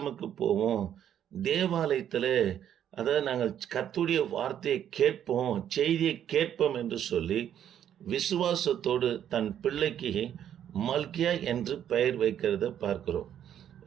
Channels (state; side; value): quieter; left; 10.0 dB